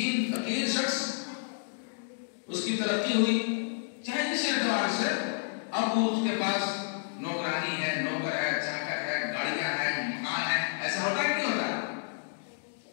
فقیر شخص، اس کی ترقی ہوئی چاہے جس اعتبار سے، اب وہ اس کے پاس نوکرانی ہے، نوکر ہے، چاکر ہے، گاڑیاں ہیں، مکان ہے. ایسا ہوتا ہے کہ نہیں ہوتا؟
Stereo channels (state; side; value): silent; right; digital silence